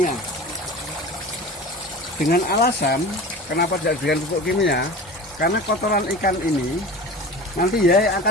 Dengan alasan kenapa tidak diberikan pupuk kimia? Karena kotoran ikan ini nanti ya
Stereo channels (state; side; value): normal; both; correlation 0.35